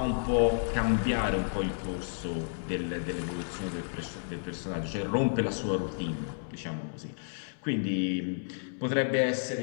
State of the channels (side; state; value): right; silent; digital silence